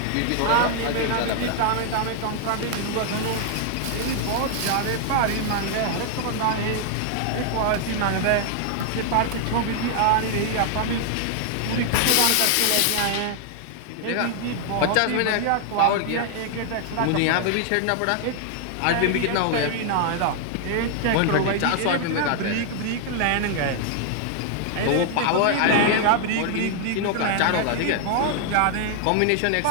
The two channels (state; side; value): different; both; correlation 0.00